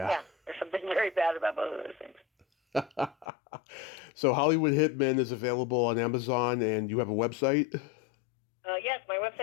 There's something very bad about both of those things. So Hollywood Hitmen is available on Amazon, and you have a website? Yes, my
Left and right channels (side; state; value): right; drops out; at 3.2 s